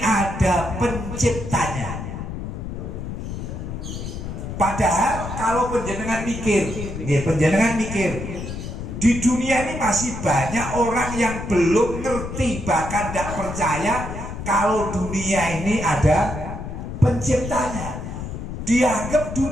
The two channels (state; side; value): noise; left; rumble, 7 dB below the sound